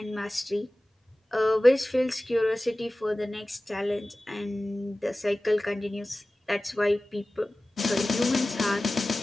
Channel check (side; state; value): both; normal; correlation 0.97